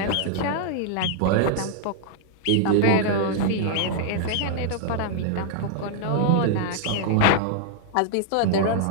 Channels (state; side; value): different; both; correlation -0.01